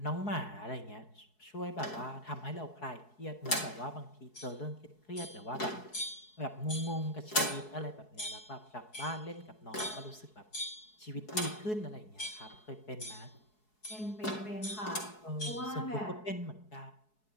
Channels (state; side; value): late; right; 4.7 ms